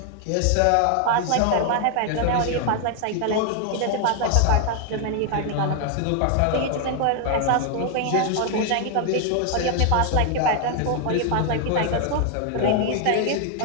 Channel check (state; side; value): different; both; correlation 0.00